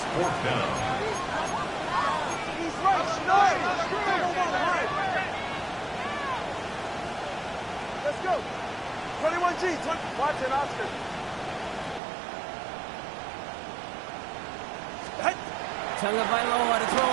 4th down. Let's go. 21G, watch it, Oscar. Tagovailoa to throw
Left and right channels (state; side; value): drops out; left; at 12.0 s